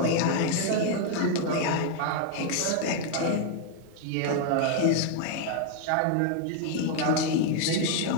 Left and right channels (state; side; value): different; both; correlation 0.00